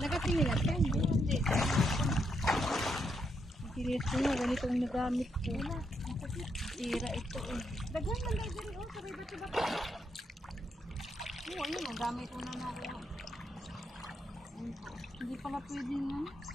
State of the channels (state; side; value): normal; both; correlation 0.78